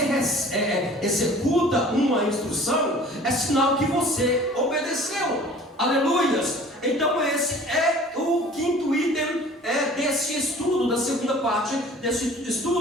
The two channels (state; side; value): normal; both; correlation 0.47